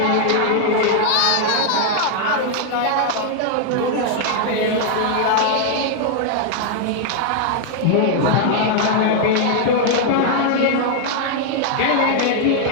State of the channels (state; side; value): different; both; correlation 0.00